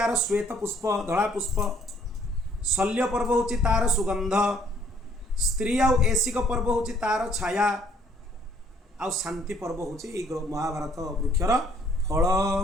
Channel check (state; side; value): normal; both; correlation 0.62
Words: श्वेत पुष्प धला पुष्प। शल्य पर्व हूँ तार सुगंध। स्त्री आउ ऐसिक पर्व हूँ तार छाया। आउ शांति पर्व हूँ महाभारत वृक्षर फल।